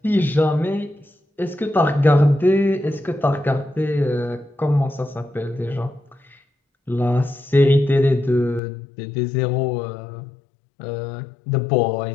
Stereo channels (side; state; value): right; drops out; at 8.6 s